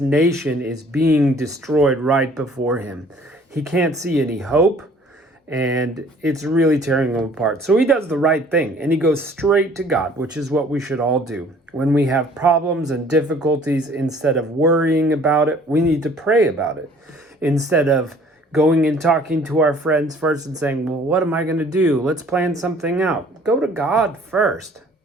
is being destroyed right before him. He can't see any hope. And it's really tearing him apart. So he does the right thing and he goes straight to God, which is what we should all do. When we have problems and difficulties, instead of worrying about it, we need to pray about it. Instead of going and talking to our friends first and saying, well, what am I going to do? Let's plan something out. Go to God first.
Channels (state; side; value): normal; both; correlation 0.54